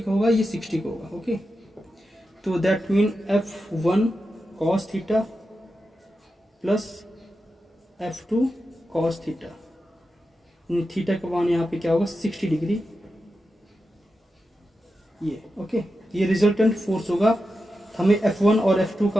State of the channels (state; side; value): normal; both; correlation 0.90